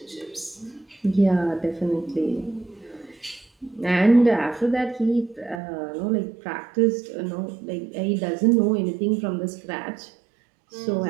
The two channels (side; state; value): left; drops out; at 5.6 s